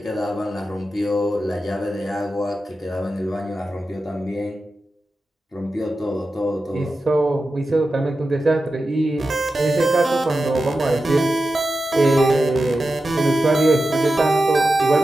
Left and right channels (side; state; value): both; normal; correlation 0.92